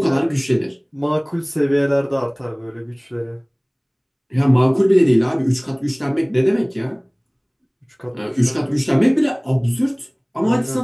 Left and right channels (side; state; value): both; identical; correlation 1.00